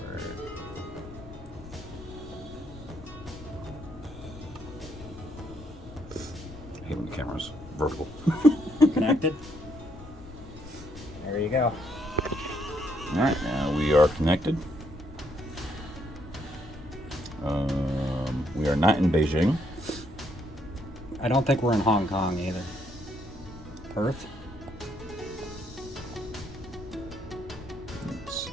I hate when the camera's vertical. Connected? There you go. Alright, now we are connected. We are not in Beijing. I don't think we're in Hong Kong either. Perth? Let's see,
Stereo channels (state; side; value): noise; left; rumble, 16 dB below the sound